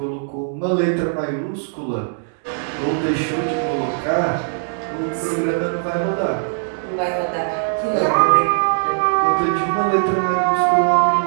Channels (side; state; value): left; silent; digital silence